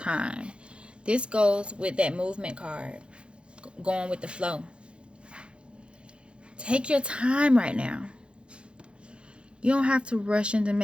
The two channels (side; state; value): left; late; 0.057 ms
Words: This goes with that movement card, going with the flow. Take your time right now. You don't have to rush into